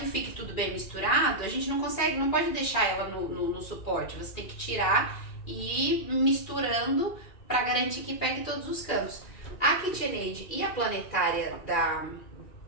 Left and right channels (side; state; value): right; late; 2.4 ms